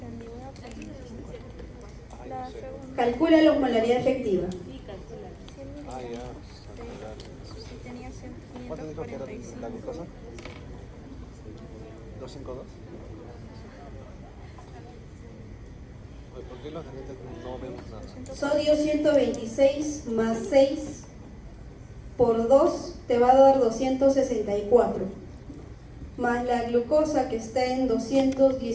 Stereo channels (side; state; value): both; identical; correlation 1.00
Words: Ay, La no sé. segunda. Calcula la osmolaridad efectiva. Ah, ya. Si tenía ¿Cuánto dijo que era 545. la glucosa? 252. Oye, ¿por qué los lentes no vemos nada? Sodio 126 más 6 por 2 te va a dar 264. Más la glucosa que está en